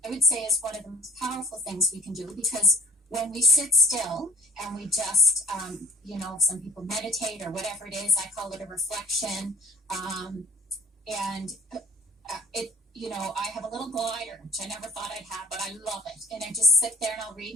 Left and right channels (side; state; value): both; normal; correlation 0.47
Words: I would say, is one of the most powerful things we can do, because when we sit still and we just, some people meditate or whatever it is, I call it a reflection. I have a little glider, which I never thought I'd have, but I love it. And I just sit there and I'll read